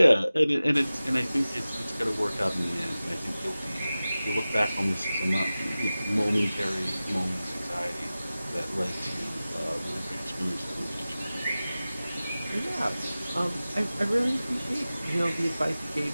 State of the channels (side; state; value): both; inverted; correlation -0.96